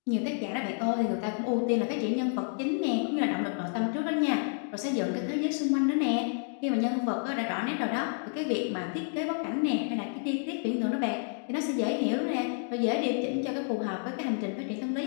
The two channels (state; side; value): silent; right; 58 dB below the other